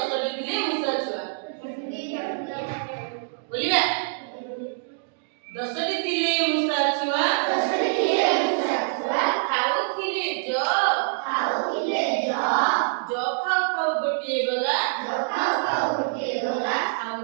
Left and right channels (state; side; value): silent; left; digital silence